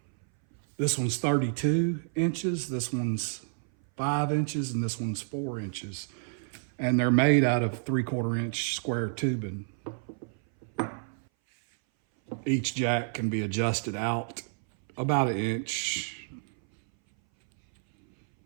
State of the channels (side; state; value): left; silent; 58 dB below the other